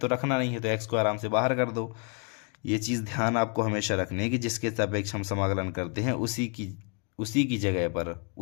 तो रखना नहीं है, तो x को आराम से बाहर कर दो। ये चीज़ ध्यान आपको हमेशा रखनी है कि जिसके सापेक्ष हम समाकलन करते हैं उसी की जगह पर,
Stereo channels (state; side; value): quieter; right; 37.7 dB